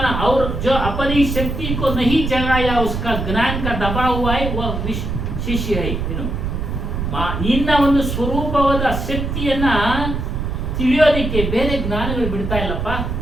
और जो अपनी शक्ति को नहीं जगाया उसका ज्ञान का दबा हुआ है वह ಶಿಷ್ಯ है. ಇನ್ನು ನಿನ್ನ ಒಂದು ಸ್ವರೂಪವಾದ ಶಕ್ತಿಯನ್ನ ತಿಳಿಯೋದಿಕ್ಕೆ ಬೇರೆ ಜ್ಞಾನಗಳು ಬಿಡ್ತಾ ಇಲ್ಲಪ್ಪ.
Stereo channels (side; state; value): right; noise; rumble, 3 dB below the sound